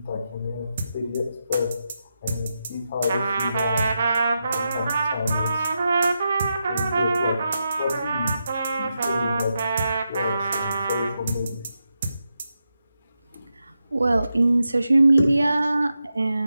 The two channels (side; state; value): both; inverted; correlation -0.87